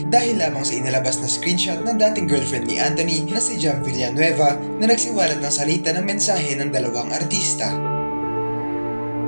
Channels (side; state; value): both; inverted; correlation -1.00